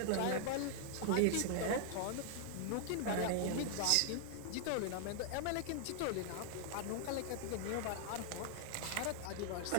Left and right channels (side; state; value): both; different; correlation -0.01